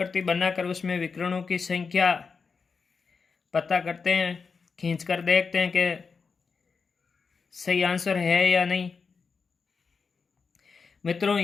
बनाकर उसमें विकर्णों की संख्या पता करते हैं, खींच कर देखते हैं कि सही आंसर है या नहीं। मित्रों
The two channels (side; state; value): right; quieter; 5.2 dB